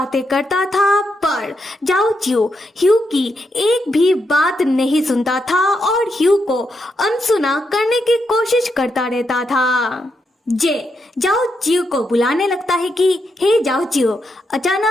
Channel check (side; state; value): both; normal; correlation 0.82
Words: करता था, पर जाओ चिऊ ह्यू की एक भी बात नहीं सुनता था और ह्यू को अनसुना करने की कोशिश करता रहता था। जे जाओ चिऊ को बुलाने लगता है कि हे जाओ चिऊ